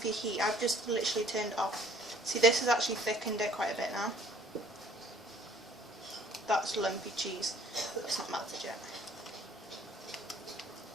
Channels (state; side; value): normal; both; correlation 0.56